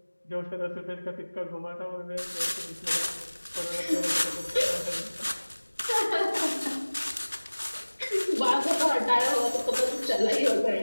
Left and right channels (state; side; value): inverted; both; correlation -1.00